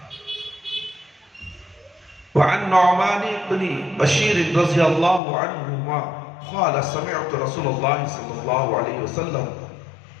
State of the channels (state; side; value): drops out; right; at 5.2 s